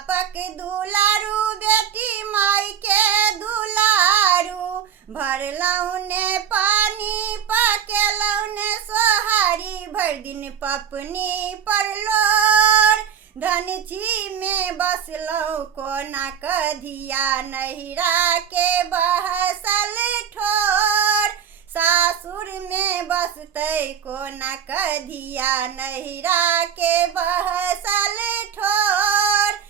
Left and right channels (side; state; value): left; quieter; 8.6 dB